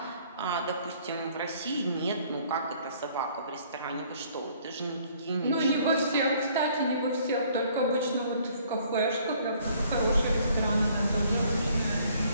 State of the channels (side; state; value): both; inverted; correlation -0.60